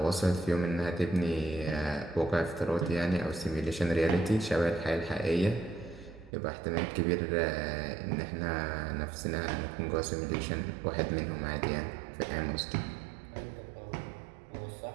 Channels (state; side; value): drops out; left; at 6.3 s